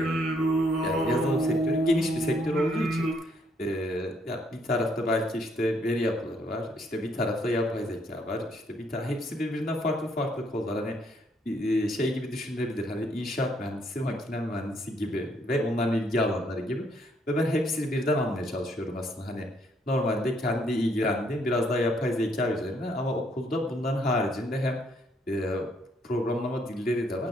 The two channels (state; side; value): normal; both; correlation 0.69